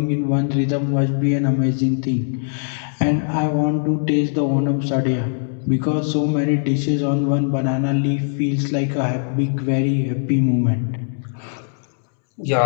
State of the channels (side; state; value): right; silent; digital silence